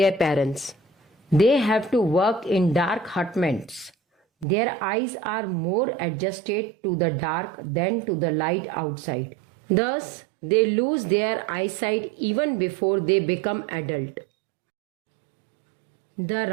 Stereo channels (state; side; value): drops out; left; at 4.5 s